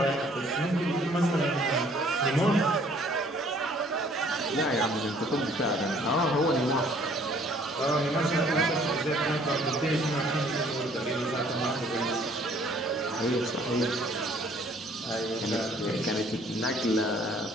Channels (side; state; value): both; normal; correlation 0.58